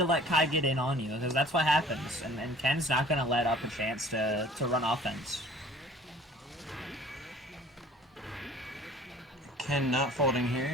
let Kai get in on you, because that's what happens. And Ken's not gonna let up a chance to run offense. Ken not folding here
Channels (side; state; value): both; normal; correlation 0.49